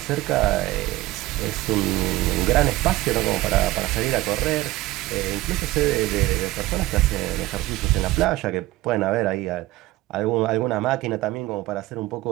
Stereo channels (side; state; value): left; quieter; 17.6 dB